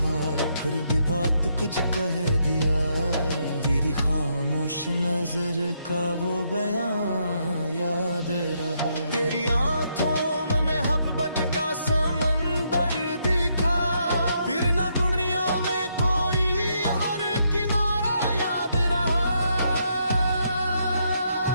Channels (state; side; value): inverted; both; correlation -0.76